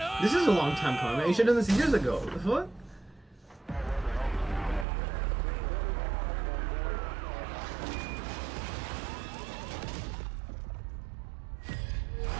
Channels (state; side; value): drops out; left; at 4.9 s